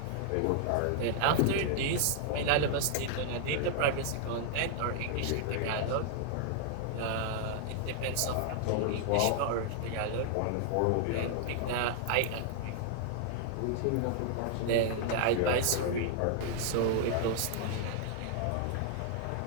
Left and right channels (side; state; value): both; different; correlation -0.01